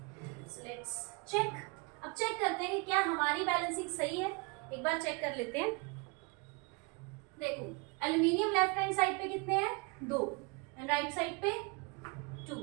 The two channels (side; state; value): left; quieter; 30.1 dB